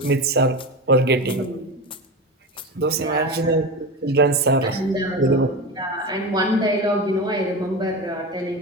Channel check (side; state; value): both; normal; correlation 0.24